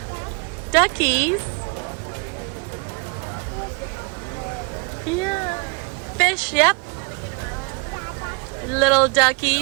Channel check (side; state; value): left; quieter; 32.1 dB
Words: Duckies? Yeah. Fish, yep. Little